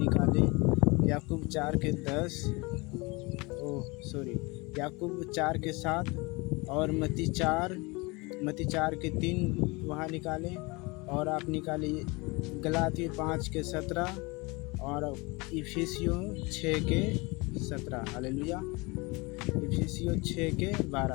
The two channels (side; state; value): right; quieter; 26.0 dB